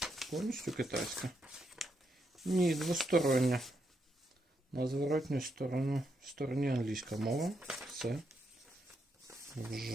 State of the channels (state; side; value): normal; both; correlation 0.80